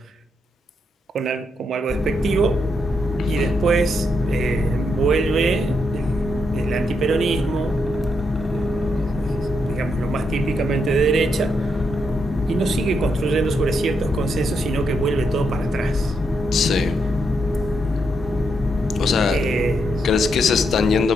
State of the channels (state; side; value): normal; both; correlation 0.80